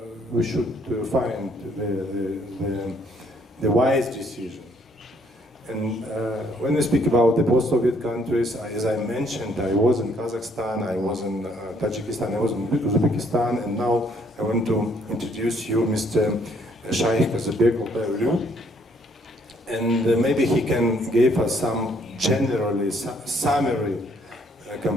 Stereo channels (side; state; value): both; normal; correlation 0.66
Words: we should find the wise decision. And when we speak about the post-Soviet countries, as I mentioned, I was in Kazakhstan, I was in Tajikistan, I was in Uzbekistan, and now I want to introduce you Mr. Shaikh Kazybek Altay Uly. And maybe he can give us some generally summary